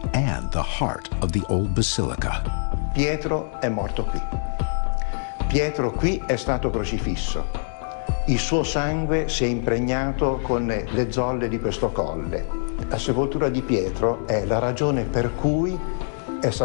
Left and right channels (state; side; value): silent; right; digital silence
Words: and the heart of the old basilica. Pietro è morto qui. Pietro qui è stato crocifisso. Il suo sangue si è impregnato con le zolle di questo colle. La sepoltura di Pietro è la ragione per cui è